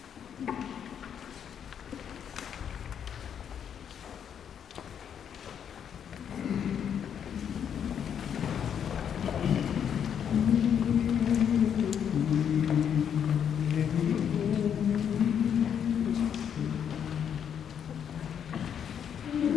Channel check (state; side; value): quieter; right; 8.4 dB